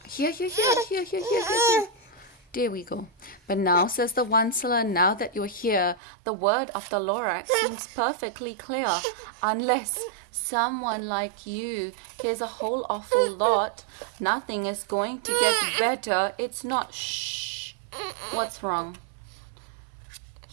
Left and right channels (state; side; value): drops out; left; at 6.0 s